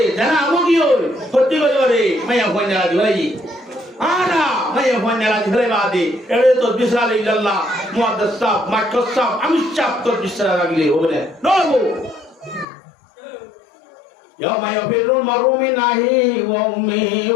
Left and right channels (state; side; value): drops out; right; at 12.7 s